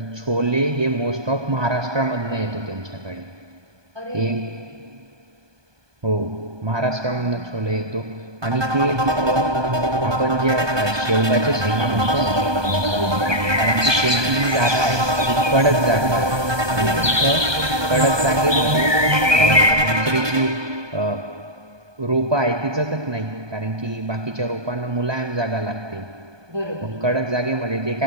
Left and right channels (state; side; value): late; left; 1.2 ms